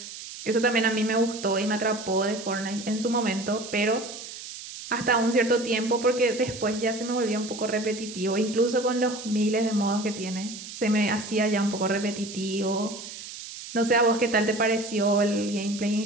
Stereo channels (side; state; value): right; noise; hiss, 12 dB below the sound